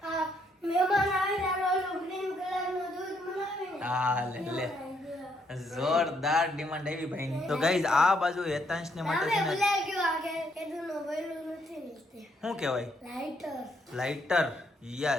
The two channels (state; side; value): normal; both; correlation 0.73